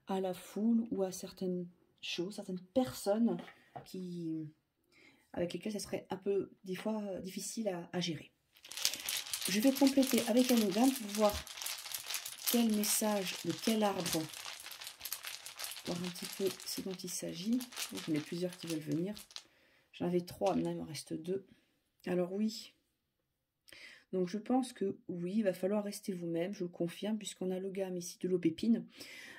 à la foule ou à certaines choses, certaines personnes avec lesquelles ça serait un peu, des fois, difficile à gérer. Je vais compléter avec un ogame pour voir quel message, de quel arbre, voir un petit peu ce dont il s'agit. J'en ai plusieurs qui veulent venir. J'en avais 3, maintenant il me reste 2. Alors oui. Donc je pense que oui, il va falloir rester vous-même, je le confirme, puisqu'on a le gamme ici de l'aubépine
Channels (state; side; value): identical; both; correlation 1.00